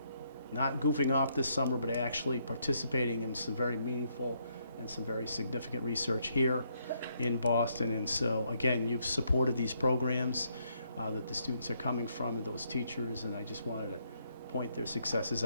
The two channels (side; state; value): both; inverted; correlation -0.74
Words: not goofing off this summer, but actually participating in some very meaningful and some very significant research here in Boston. And so, again, you've supported these programs that the students are coming from and those teachers, and I just wanted to point their successes